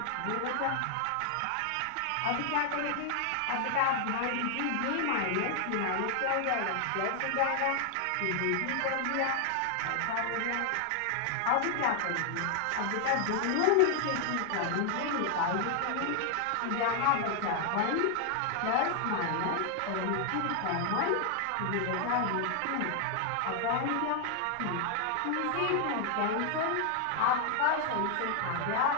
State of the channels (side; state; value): both; different; correlation 0.00